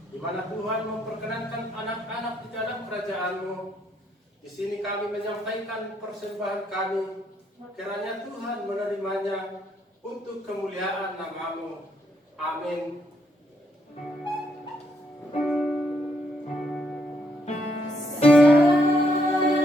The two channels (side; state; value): both; normal; correlation 0.74